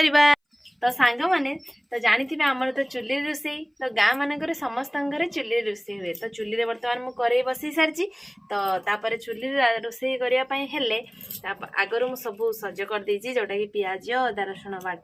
तो सांग माने तो जानी आमर तो चुल्ली रोसई तो गाँ मानक समस्त घरे चुल्ली रोसई हुए। तो चुल्ली रे बर्तमान मु करेई बसई सारी तो तापर चुल्ली रोसई करने हेले आगर मु सब सज कर देछि जोटा कि पियाज अदा रसुण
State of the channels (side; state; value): both; identical; correlation 1.00